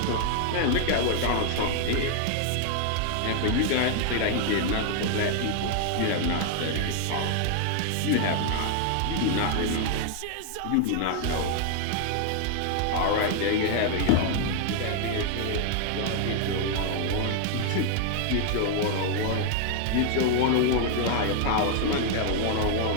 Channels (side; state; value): both; different; correlation 0.00